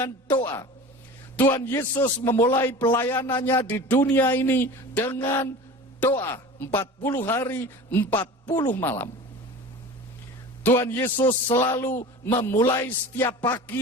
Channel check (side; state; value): both; normal; correlation 0.36